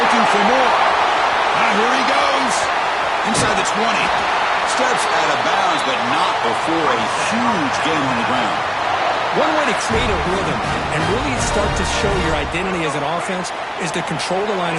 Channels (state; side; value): identical; both; correlation 1.00